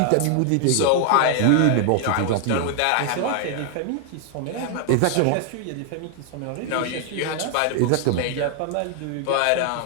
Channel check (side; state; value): both; different; correlation 0.00